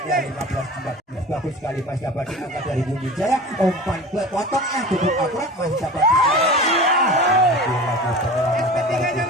ya 15-14 bagus sekali masih dapat diangkat dari Bumi Jaya umpan ke potong cukup akurat masih dapat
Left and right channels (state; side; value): normal; both; correlation 0.36